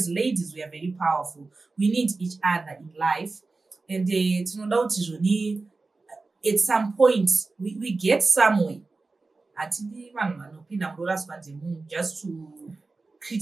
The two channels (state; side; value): quieter; left; 3.7 dB